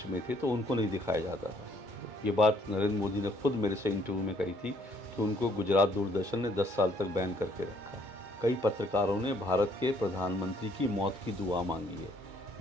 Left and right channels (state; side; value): late; left; 2.2 ms